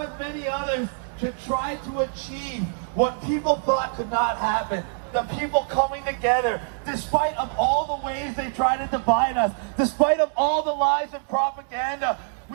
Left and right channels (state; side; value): silent; left; digital silence